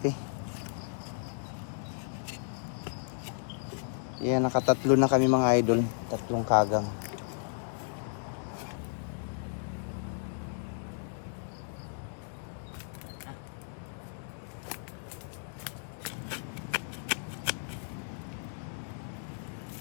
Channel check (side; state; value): right; silent; digital silence